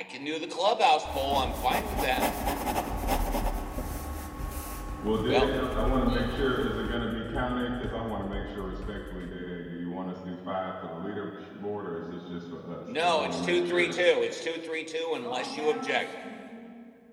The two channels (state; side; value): identical; both; correlation 1.00